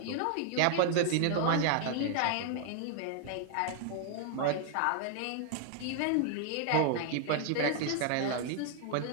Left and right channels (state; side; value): different; both; correlation 0.00